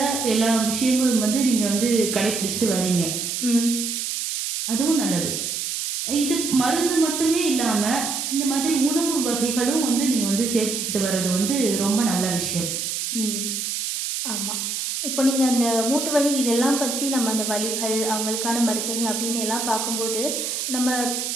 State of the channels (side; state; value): right; noise; hiss, 3 dB below the sound